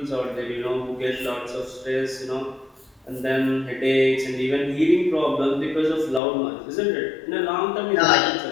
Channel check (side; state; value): right; drops out; at 6.2 s